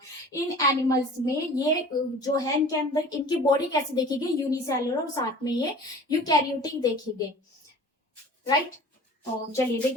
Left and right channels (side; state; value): both; normal; correlation 0.44